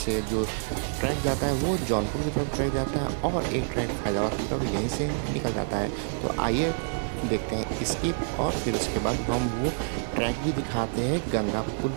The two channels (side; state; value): left; silent; digital silence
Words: जो ट्रैक जाता है वो जौनपुर की तरफ ट्रैक जाता है और एक ट्रैक फैजाबाद की तरफ यहीं से निकल जाता है। तो आइए देखते हैं इसकी, और फिर उसके बाद हम वो ट्रैक भी दिखाते हैं गंगा पुल